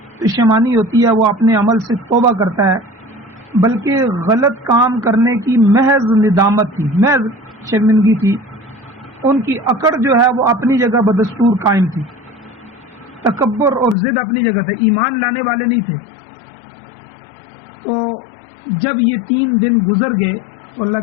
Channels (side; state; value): right; drops out; at 14.0 s